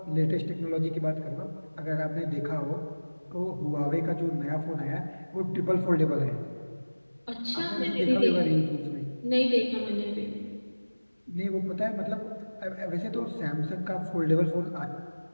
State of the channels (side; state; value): both; inverted; correlation -1.00